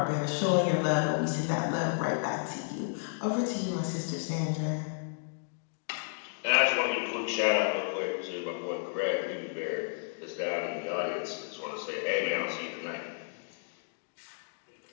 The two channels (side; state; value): right; silent; digital silence